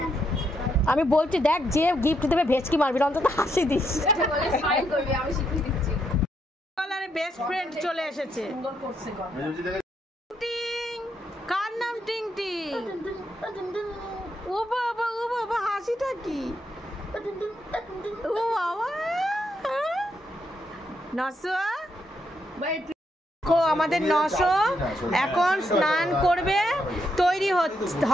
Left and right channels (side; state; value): both; normal; correlation 0.78